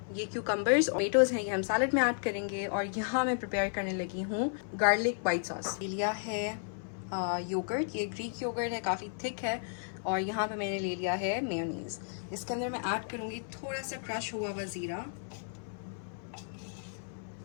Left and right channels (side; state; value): right; silent; 55 dB below the other